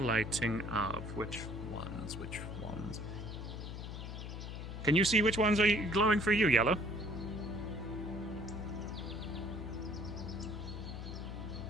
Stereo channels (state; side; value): noise; left; hum, 7 dB below the sound